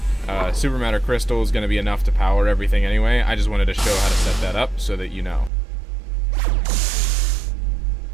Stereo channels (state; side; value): drops out; left; at 5.5 s